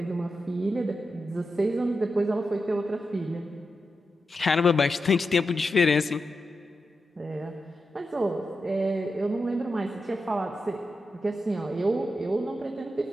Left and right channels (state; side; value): normal; both; correlation 0.88